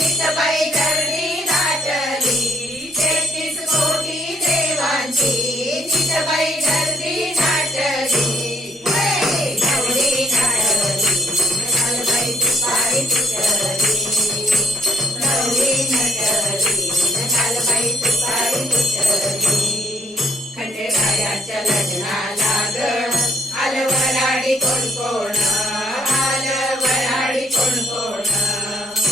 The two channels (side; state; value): both; normal; correlation 0.71